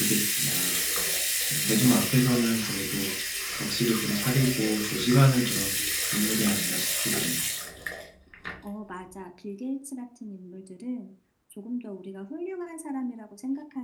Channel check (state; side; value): identical; both; correlation 1.00